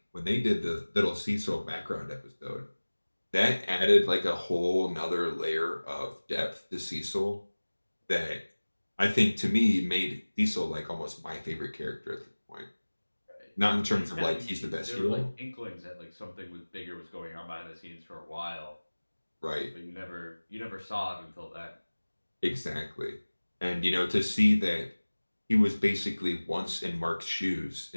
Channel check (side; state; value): both; inverted; correlation -1.00